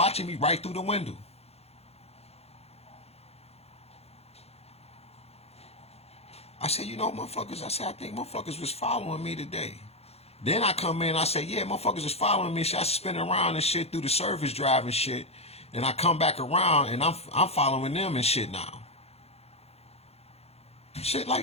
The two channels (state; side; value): late; right; 0.30 ms